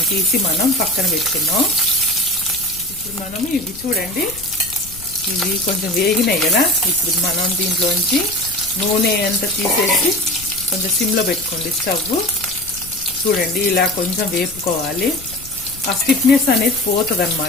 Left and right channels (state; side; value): noise; left; rumble, 18 dB below the sound